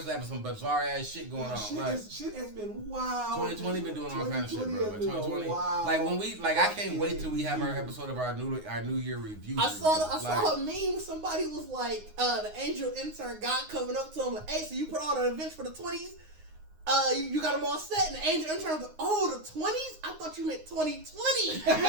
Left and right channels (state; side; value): late; left; 9.6 ms